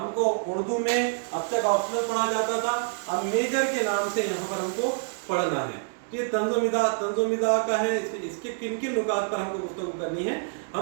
उर्दू में अब तक ऑप्शनल पढ़ा जाता था, अब मेजर के नाम से यहाँ पर हमको पढ़ना है। तो ये तंज़ो मिज़ाह का है, इसके किन किन नुकात पर हमको गुफ्तगू करनी है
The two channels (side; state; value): left; silent; digital silence